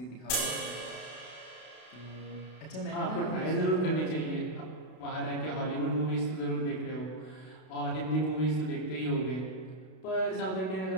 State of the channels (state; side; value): late; right; 32 ms